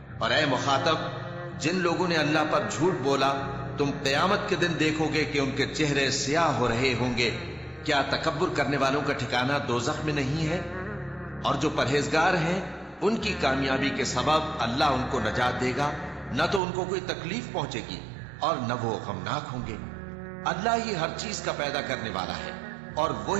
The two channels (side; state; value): left; drops out; at 16.6 s